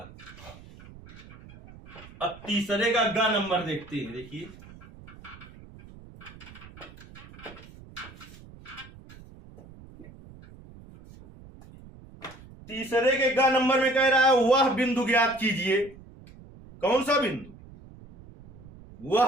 अब तीसरे का ग नंबर देखते हैं। देखिए तीसरे के ग नंबर में कह रहा है वह बिंदु ज्ञात कीजिए। कौन सा बिंदु?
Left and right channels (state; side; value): noise; right; rumble, 20 dB below the sound